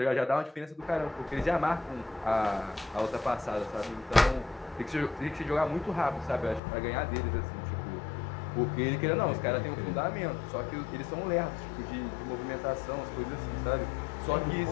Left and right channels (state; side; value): drops out; right; at 6.6 s